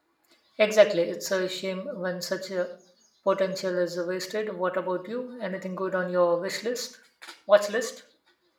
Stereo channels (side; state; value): both; identical; correlation 1.00